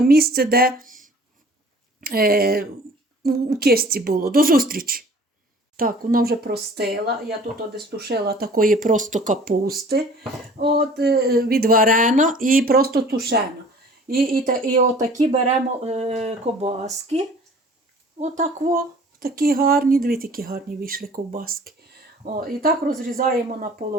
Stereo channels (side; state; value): both; normal; correlation 0.49